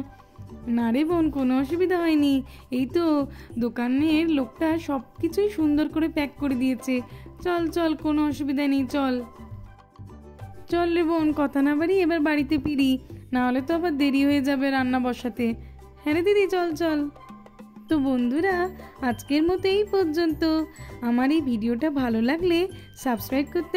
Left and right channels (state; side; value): identical; both; correlation 1.00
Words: না রে বোন, কোনো অসুবিধা হয়নি, এই তো দোকানের লোকটা সব কিছুই সুন্দর করে প্যাক করে দিয়েছে। চল, কোনো অসুবিধা নেই, চল রে বোন, কথা না বাড়ি এবার বাড়িতে ফিরি, না হলে তো আবার দেরি হয়ে যাবে রান্না বসাতে। হ্যাঁ রে দিদি, চল। তো বন্ধুরা, আজকের মতো এই পর্যন্ত। আমার এই ভিডিওটা ভালো লাগলে সাবস্ক্রাইব করতে